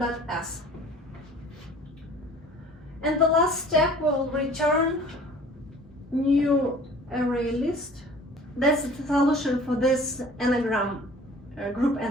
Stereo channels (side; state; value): both; normal; correlation 0.48